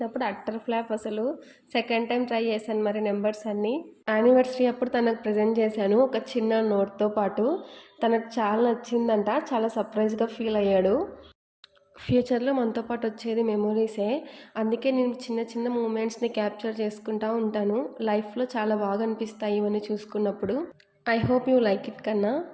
అట్టర్ ఫ్లాప్ అసలు. సెకండ్ టైం ట్రై చేశాను మరి నెంబర్స్ అన్నీ. యానివర్సరీ అప్పుడు తనకు ప్రజెంట్ చేశాను ఒక చిన్న నోట్తో పాటు. తనకు చాలా నచ్చిందంట. చాలా సర్ప్రైజ్గా ఫీల్ అయ్యాడు. ఫ్యూచర్లో మనతో పాటు వచ్చేది మెమొరీసే. అందుకే నేను చిన్న చిన్న మూమెంట్స్ని క్యాప్చర్ చేసుకుంటూ ఉంటాను. లైఫ్లో చాలా బాగా అనిపిస్తాయి ఇవన్నీ చూసుకున్నప్పుడు. I hope you like it కన్నా.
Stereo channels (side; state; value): both; identical; correlation 1.00